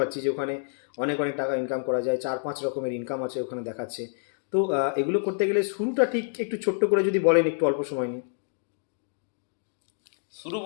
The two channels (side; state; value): right; silent; digital silence